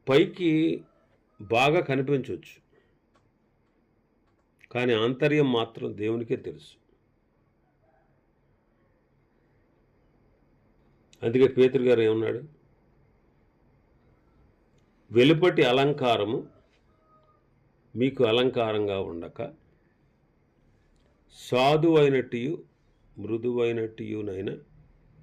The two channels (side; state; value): both; identical; correlation 1.00